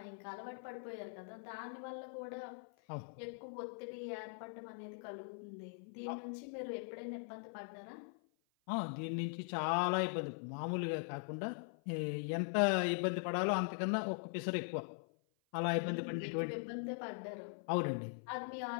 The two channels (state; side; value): silent; right; 50 dB below the other